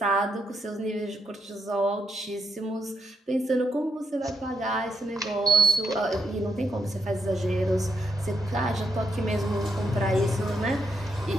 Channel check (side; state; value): both; normal; correlation 0.80